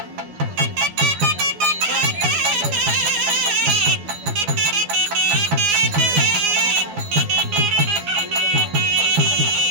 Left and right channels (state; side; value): late; left; 12 ms